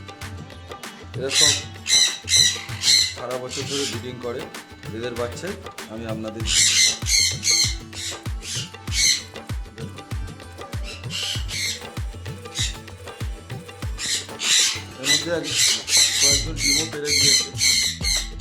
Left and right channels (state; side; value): identical; both; correlation 1.00